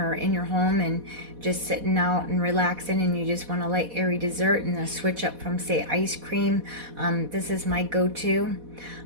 in your home and just sitting out and relaxing, and you just want a light airy dessert and a switch up from, say, ice cream. This is my go-to.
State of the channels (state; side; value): late; left; 4.1 ms